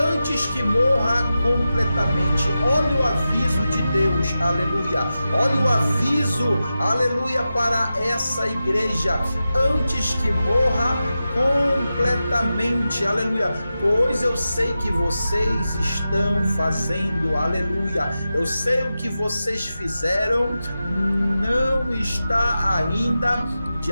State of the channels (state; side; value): inverted; both; correlation -0.92